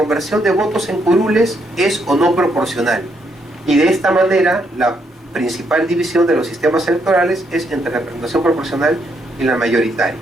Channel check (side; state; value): both; normal; correlation 0.75